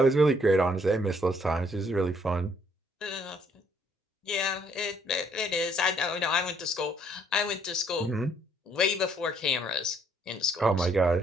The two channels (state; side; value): normal; both; correlation 0.66